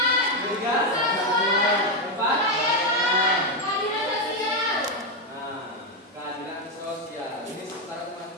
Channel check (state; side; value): normal; both; correlation 0.06